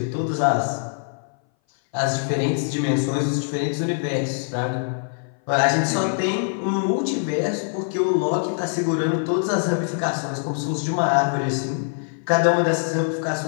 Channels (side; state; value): right; silent; 59 dB below the other